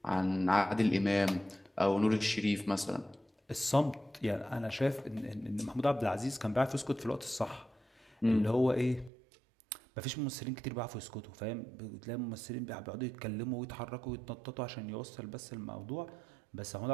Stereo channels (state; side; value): drops out; left; at 9.1 s